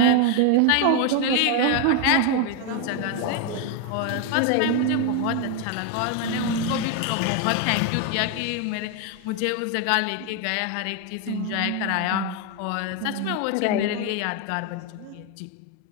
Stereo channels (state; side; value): different; both; correlation 0.01